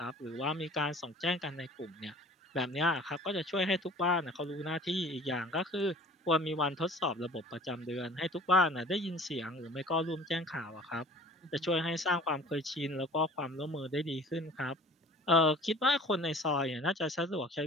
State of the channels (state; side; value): normal; both; correlation 0.47